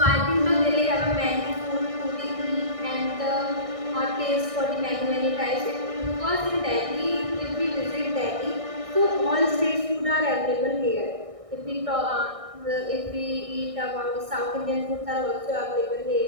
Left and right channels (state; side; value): late; left; 1.6 ms